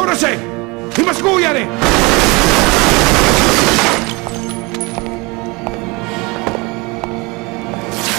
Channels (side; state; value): left; quieter; 26.4 dB